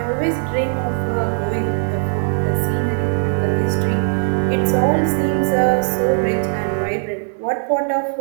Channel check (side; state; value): left; silent; digital silence